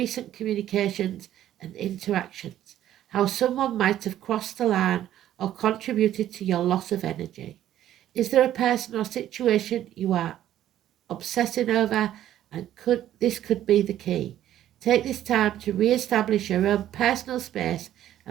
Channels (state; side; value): quieter; left; 12.1 dB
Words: communications and interactions, how someone might have crossed the line or contributed to your loss of energy. Is there a person or situation you are obsessing over? And this could be the key. Take this time to re-establish your own personal space